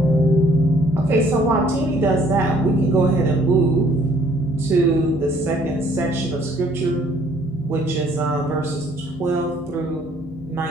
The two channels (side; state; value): both; normal; correlation 0.61